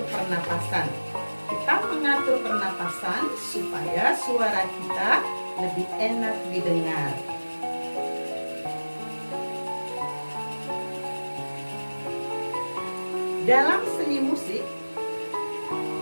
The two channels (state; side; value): inverted; both; correlation -1.00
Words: pernapasan. Kita mengatur pernapasan supaya suara kita lebih enak didengar. Dalam seni musik,